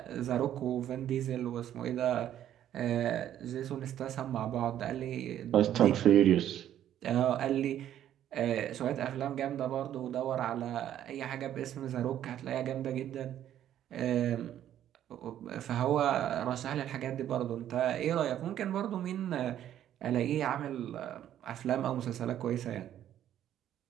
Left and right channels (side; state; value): left; quieter; 11.2 dB